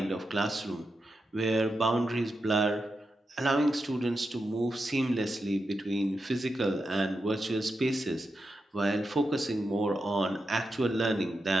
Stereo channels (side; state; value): both; normal; correlation 0.88